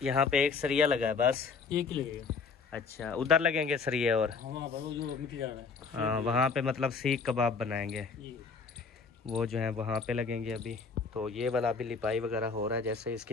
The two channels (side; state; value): right; quieter; 5.0 dB